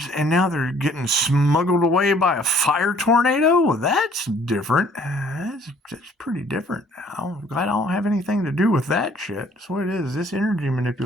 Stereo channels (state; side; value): normal; both; correlation 0.58